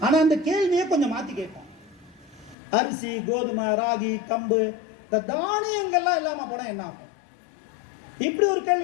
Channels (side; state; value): right; drops out; at 2.6 s